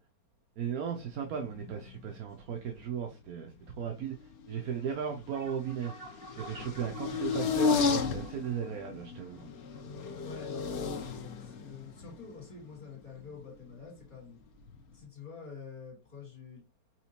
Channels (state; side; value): late; left; 4.3 ms